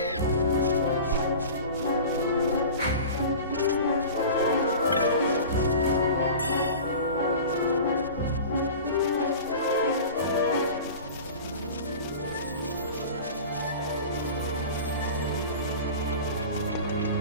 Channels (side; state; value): both; inverted; correlation -0.37